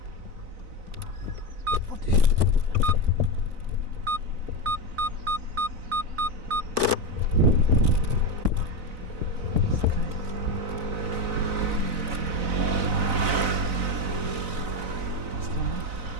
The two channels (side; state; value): left; late; 4.0 ms